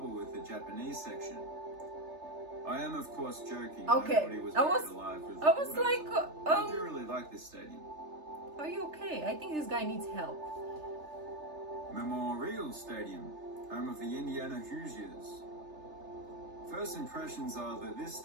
with the Japanese section. I am, of course, joking. Okay, Nobody was I was alive with like, I do really like this stadium. Are you okay? I think this guy needs help. Memorial Stadium, home of the Indiana Hoosiers. First impressions are that this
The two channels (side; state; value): left; late; 3.3 ms